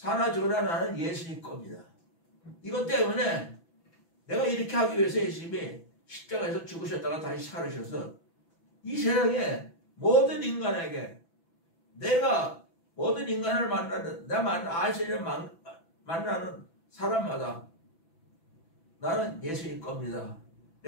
죽으나 나는 예수님 겁니다. 이것 때문에 내가 이렇게 하기 위해서 예수님이 십자가에서 죽으셨다가 다시 살으셔서 이 세상에 모든 인간에게 내가 모든 인간을 만나는 내가 아시는 만나는 사람마다 나는 예수님 겁니다.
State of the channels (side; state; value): right; late; 6.0 ms